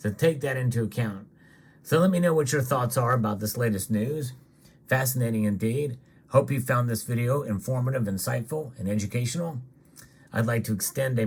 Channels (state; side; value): identical; both; correlation 1.00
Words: take that into account. So let me know what your thoughts are about this latest news. Fascinating indeed. Hope you found this video informative, insightful, and educational. I'd like to extend a